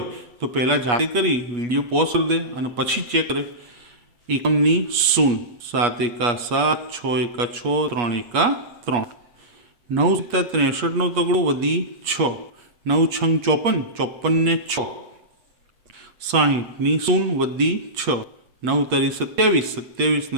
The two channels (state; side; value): late; left; 8.4 ms